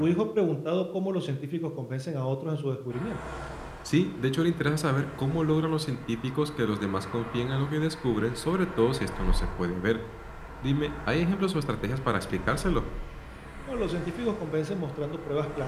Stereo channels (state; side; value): identical; both; correlation 1.00